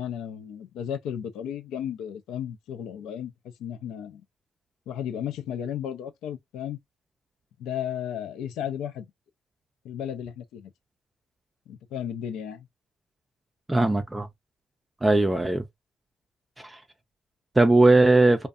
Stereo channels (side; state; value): both; normal; correlation 0.89